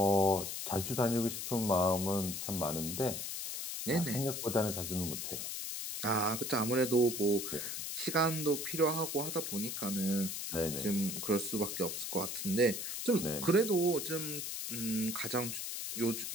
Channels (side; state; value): left; noise; hiss, 4 dB below the sound